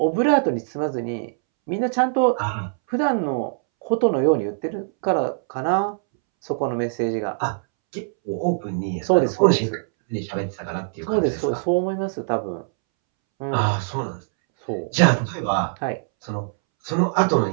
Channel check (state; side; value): silent; left; 64 dB below the other